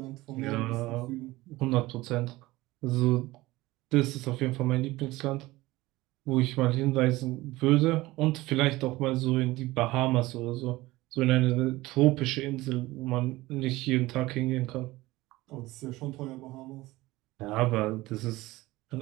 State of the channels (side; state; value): left; quieter; 19.1 dB